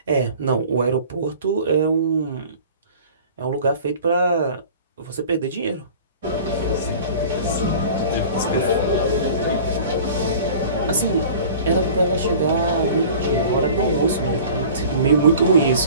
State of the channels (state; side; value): inverted; both; correlation -0.43